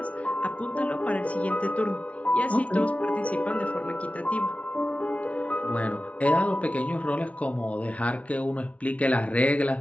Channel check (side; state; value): right; late; 0.065 ms